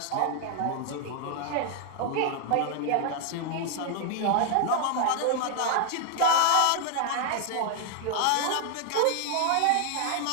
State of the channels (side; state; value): both; different; correlation 0.00